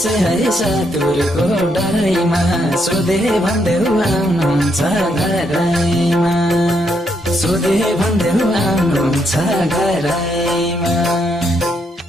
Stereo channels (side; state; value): both; normal; correlation 0.76